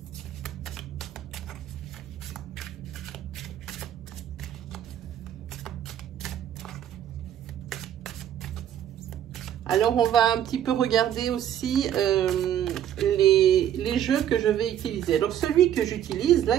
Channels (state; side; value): quieter; left; 10.6 dB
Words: Alors, on va un petit peu regarder aussi les jeux que je vais utiliser. Alors, celui que j'utilise, là,